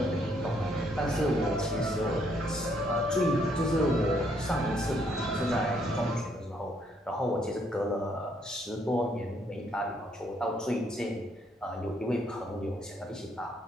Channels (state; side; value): normal; both; correlation 0.70